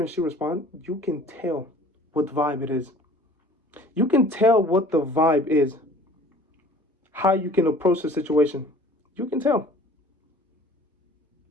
and she responds, you can tell what vibe it is. You can tell what the vibe is. How you can approach the situation. You can tell.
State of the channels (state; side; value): normal; both; correlation 0.49